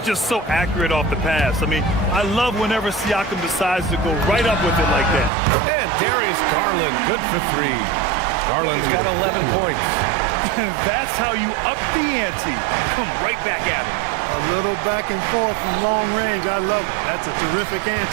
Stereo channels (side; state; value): left; drops out; at 5.3 s